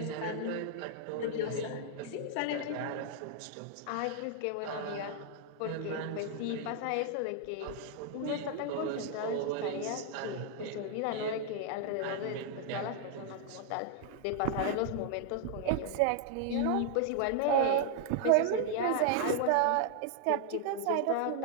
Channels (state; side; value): different; both; correlation 0.00